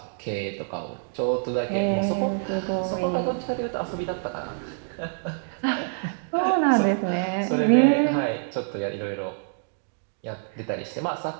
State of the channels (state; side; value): silent; left; digital silence